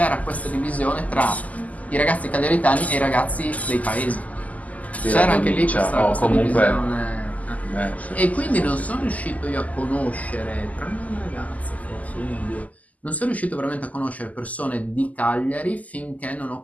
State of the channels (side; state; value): right; late; 0.076 ms